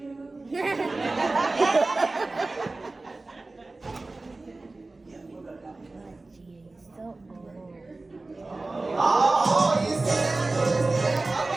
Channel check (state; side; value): quieter; left; 3.2 dB